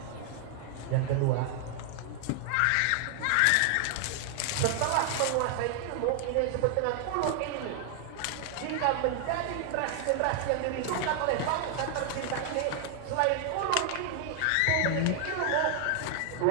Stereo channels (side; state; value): both; different; correlation 0.00